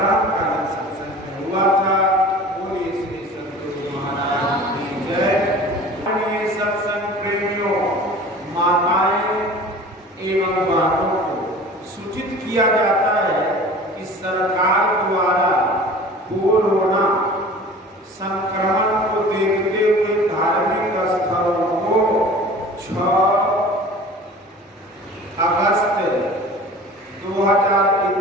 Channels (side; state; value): both; normal; correlation 0.42